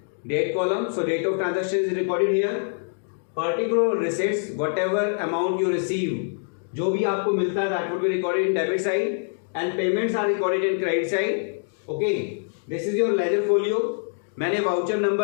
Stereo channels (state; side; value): silent; right; digital silence